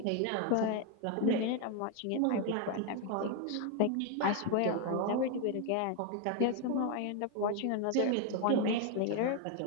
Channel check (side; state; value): both; different; correlation 0.01